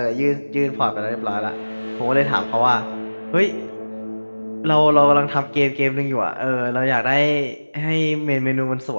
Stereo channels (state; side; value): inverted; both; correlation -1.00